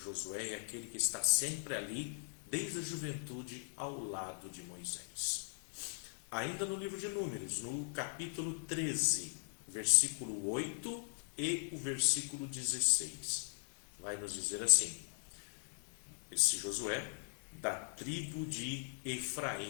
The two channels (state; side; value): silent; right; digital silence